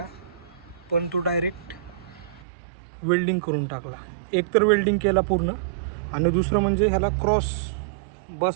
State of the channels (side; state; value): left; drops out; at 2.4 s